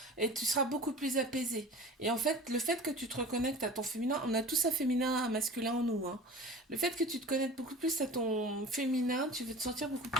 et tu seras beaucoup plus apaisé. Et en fait, le fait que tu te reconnectes à ton féminin, on a tous un féminin, un masculin en nous, hein. Le fait que tu te connectes beaucoup plus à ton féminin, tu vas te sentir beaucoup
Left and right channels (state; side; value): normal; both; correlation 0.39